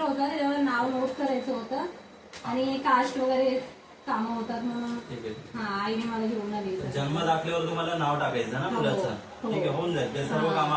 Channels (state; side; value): identical; both; correlation 1.00